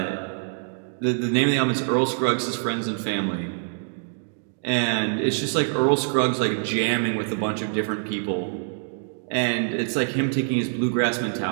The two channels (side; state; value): left; silent; 61 dB below the other